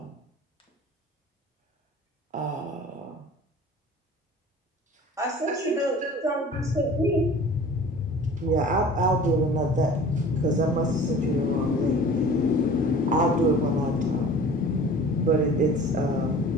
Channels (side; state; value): both; normal; correlation 0.44